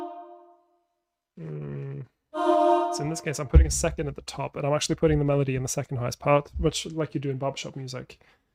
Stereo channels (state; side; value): identical; both; correlation 1.00